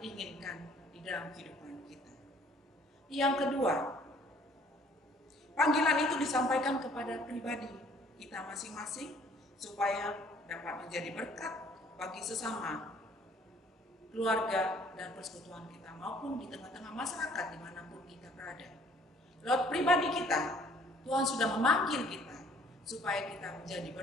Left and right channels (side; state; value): both; normal; correlation 0.58